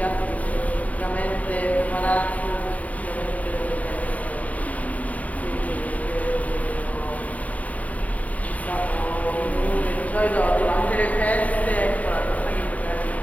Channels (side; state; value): right; late; 0.071 ms